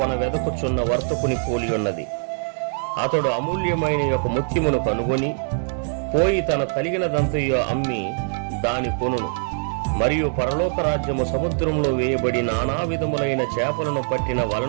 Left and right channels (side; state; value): left; silent; digital silence